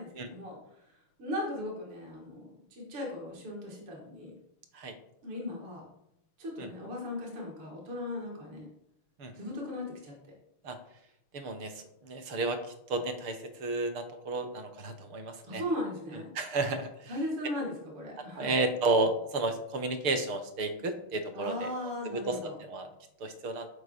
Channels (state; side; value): late; left; 6.6 ms